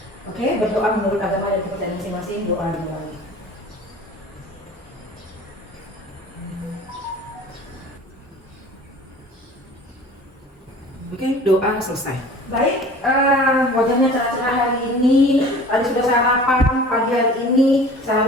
Oke, berdoa menurut agama dan kepercayaan masing-masing, doa dimulai. Oke, doa selesai. Baik, wajahnya cerah-cerah hari ini. Tadi sudah sarapan, pagi hari ini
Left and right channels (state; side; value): normal; both; correlation 0.44